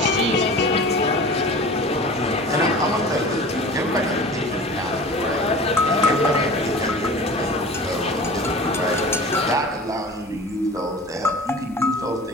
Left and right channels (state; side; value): normal; both; correlation 0.39